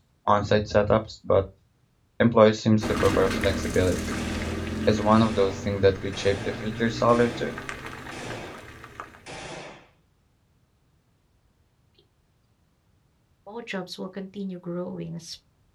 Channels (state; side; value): identical; both; correlation 1.00